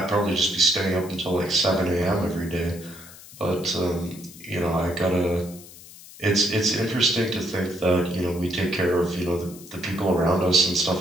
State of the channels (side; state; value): left; noise; hiss, 18 dB below the sound